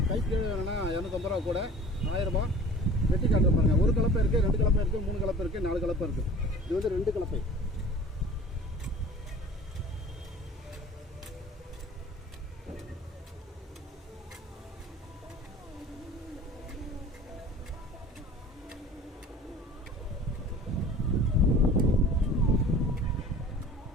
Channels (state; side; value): normal; both; correlation 0.44